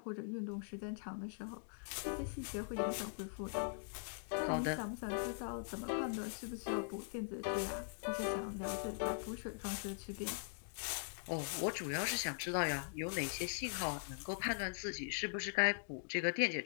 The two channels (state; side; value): silent; right; digital silence